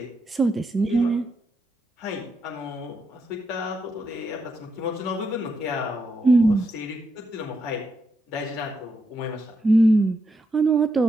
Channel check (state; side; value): normal; both; correlation 0.82